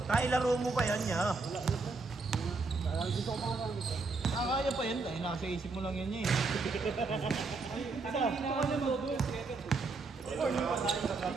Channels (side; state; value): left; quieter; 3.9 dB